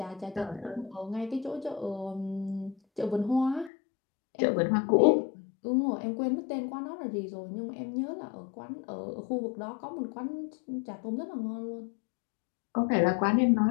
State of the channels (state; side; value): drops out; right; at 3.7 s